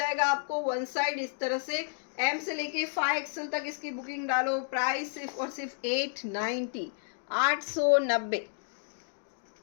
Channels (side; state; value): right; silent; digital silence